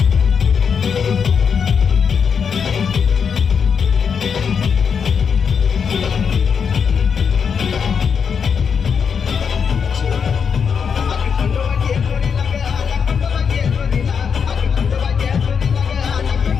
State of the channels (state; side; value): quieter; right; 6.5 dB